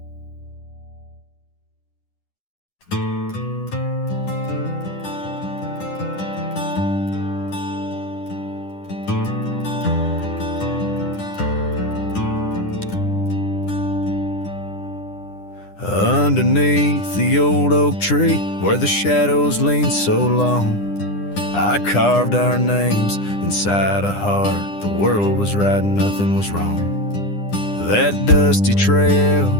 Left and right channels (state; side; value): late; right; 9.9 ms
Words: Underneath the old oak tree where the shadows lean so long, I carved our names inside a heart. The world was right and nothing was wrong. That dusty trail